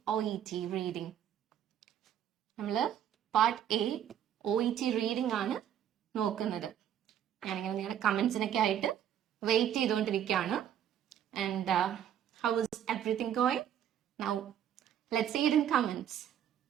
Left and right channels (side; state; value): left; quieter; 10.0 dB